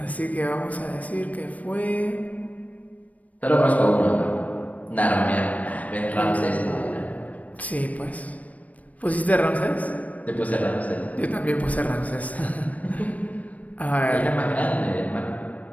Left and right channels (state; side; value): late; right; 0.070 ms